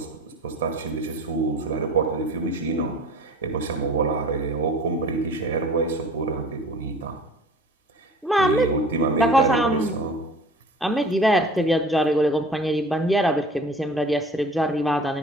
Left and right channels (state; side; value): normal; both; correlation 0.43